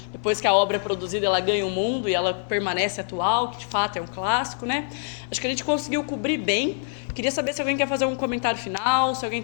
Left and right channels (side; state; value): right; silent; digital silence